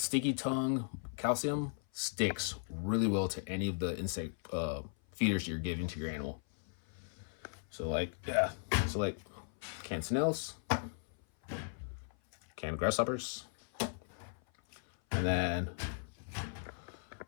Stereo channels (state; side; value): silent; right; 53 dB below the other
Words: tongue calcium sticks really well to any of the insect feeders you're giving to your animal. So like canned snails, canned grasshoppers, and then